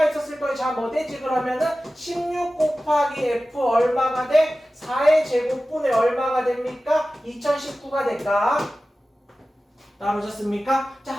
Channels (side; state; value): both; normal; correlation 0.95